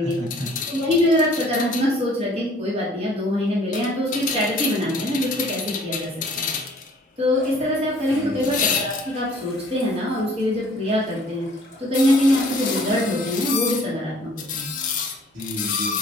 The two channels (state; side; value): normal; both; correlation 0.55